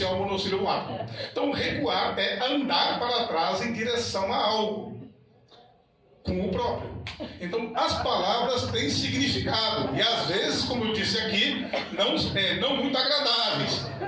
o monossílabo ar. Então, recuar é andar para trás em direção a algo. Com o próprio. Então, as palavras têm significado. E às vezes, como eu disse aqui, não muito agradáveis.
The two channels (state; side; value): identical; both; correlation 1.00